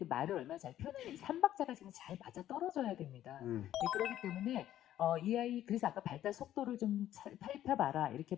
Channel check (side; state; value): right; quieter; 12.3 dB